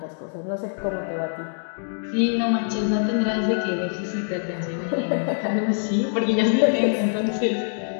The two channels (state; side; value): silent; right; digital silence